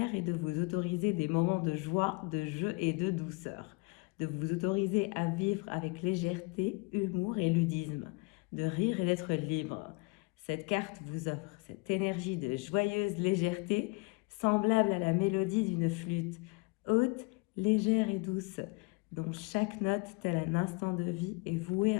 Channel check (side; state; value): right; quieter; 29.2 dB